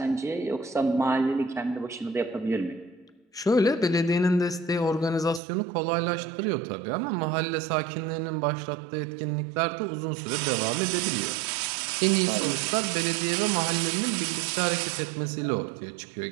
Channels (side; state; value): left; drops out; at 5.4 s